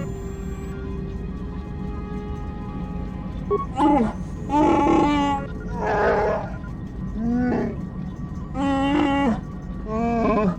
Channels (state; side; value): identical; both; correlation 1.00